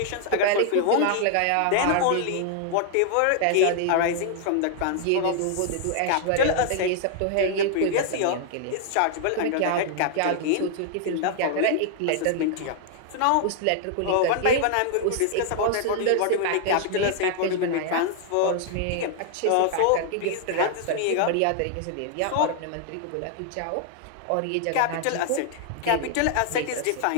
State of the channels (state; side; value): different; both; correlation 0.00